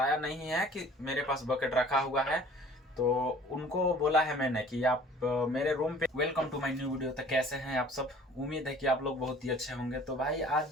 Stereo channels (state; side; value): normal; both; correlation 0.50